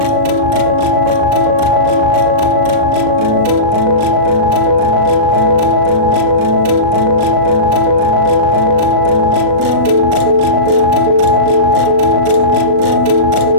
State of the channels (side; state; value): left; late; 37 ms